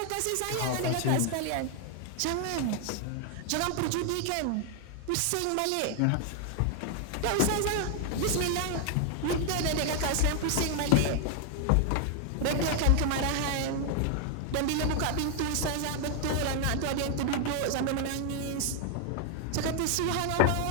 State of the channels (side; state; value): both; different; correlation 0.00